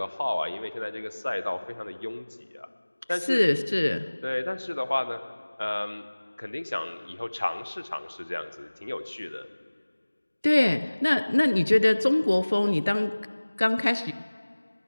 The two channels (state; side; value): inverted; both; correlation -1.00